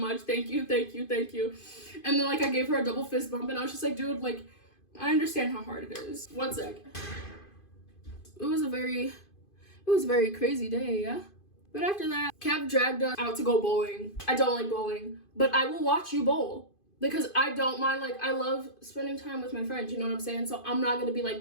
Thank you. And then like I gave her a double fist bump and I was just like, dude, like I understand how hard it is. One sec. It was a very crazy day, yeah? But after that, Kev dragged us out to go bowling. I don't like bowling, but I will watch you bowl. Because I don't mind, like, I love spending time with my friends, you know what I'm saying? So I'm not gonna be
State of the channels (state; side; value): late; right; 2.5 ms